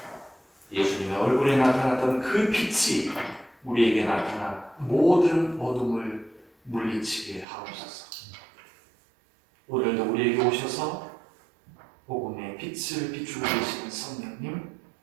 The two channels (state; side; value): drops out; left; at 7.5 s